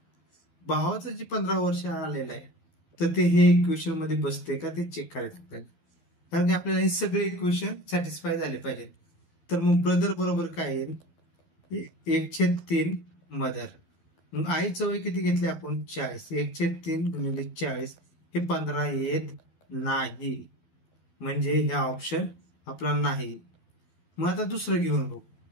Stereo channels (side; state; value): right; late; 11 ms